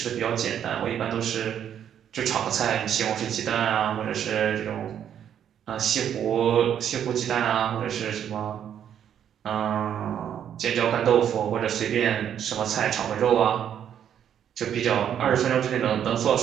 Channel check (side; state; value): left; quieter; 9.3 dB